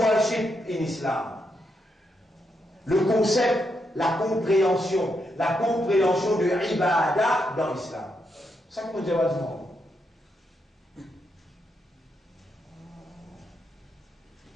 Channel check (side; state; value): both; normal; correlation 0.81